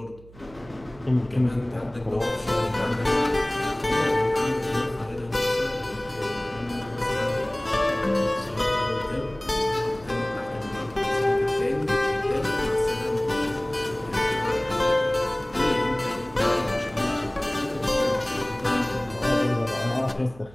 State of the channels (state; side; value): noise; right; hum, 22 dB below the sound